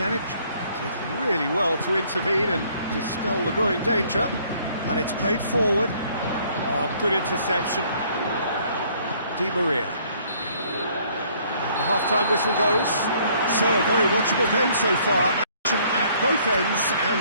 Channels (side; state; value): both; inverted; correlation -0.62